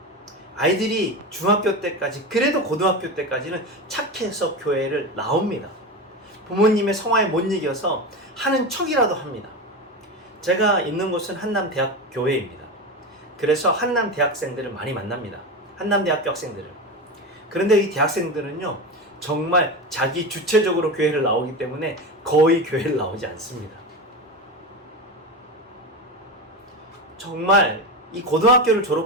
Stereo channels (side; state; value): both; normal; correlation 0.21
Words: 아이들이 중학교 때까지, 그래도 고등학교 때까지는 착해서 교회를 나옵니다. 부모님의 성화에 못 이겨서 하는 척이라도 합니다. 제가 있는 곳은 한남대학 교회입니다. 그래서 한남 대학생들을 많이 만납니다. 한남대학교 학생들을. 그런데 이 대학생들은요, 정말 자기 주체적으로 교회를 나오기 때문에 거의 교회를 나오지 않습니다. 정말 이 고등학교를